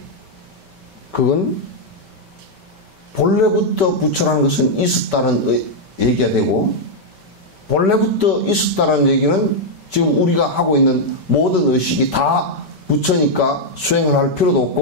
그건 본래부터 부처라는 것은 있었다는 얘기가 되고 본래부터 있었다는 얘기는 지금 우리가 하고 있는 모든 의식이 다 부처니까 수행을 할 필요도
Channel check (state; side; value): late; left; 5.2 ms